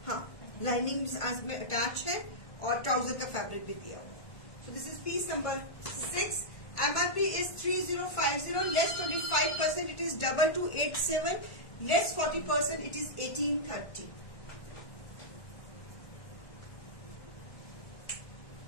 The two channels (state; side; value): late; right; 1.6 ms